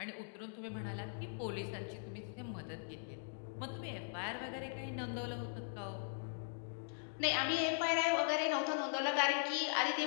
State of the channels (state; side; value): silent; right; digital silence